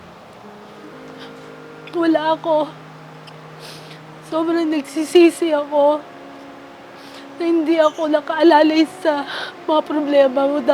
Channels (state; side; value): identical; both; correlation 1.00